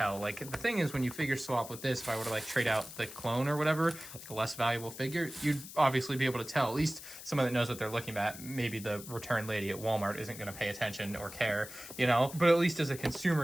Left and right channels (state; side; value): noise; left; hiss, 13 dB below the sound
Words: Like, the thing is, when you figure swap with this, if I were to like trade out the clone or whatever, like a less valuable figure, you'd obviously be able to tell. At least someone that knows what they're looking at. Maybe the return lady at Walmart isn't gonna pay attention or care, you know? But at least as a